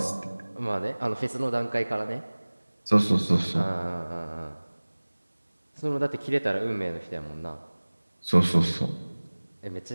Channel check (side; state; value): both; inverted; correlation -1.00